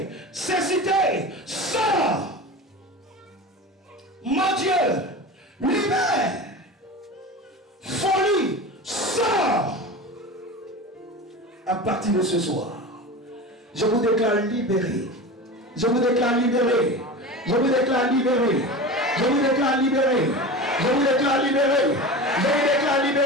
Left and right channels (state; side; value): normal; both; correlation 0.30